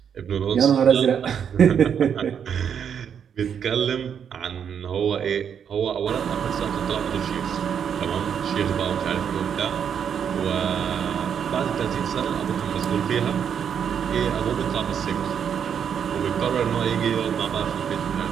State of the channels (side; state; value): left; quieter; 7.9 dB